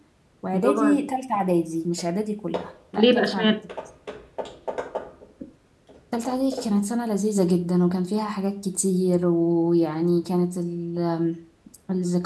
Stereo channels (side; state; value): both; identical; correlation 1.00